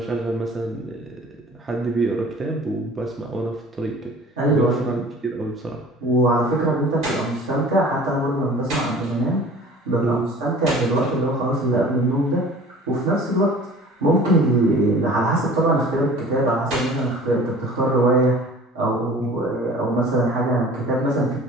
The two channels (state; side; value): normal; both; correlation 0.46